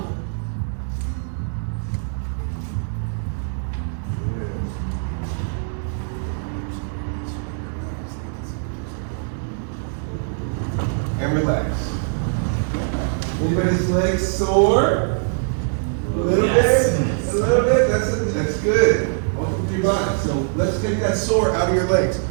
And relax. Anybody's legs sore? A little bit? A little bit? That's good. Welcome to your body. So let's take that sore out of your legs.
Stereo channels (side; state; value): left; silent; digital silence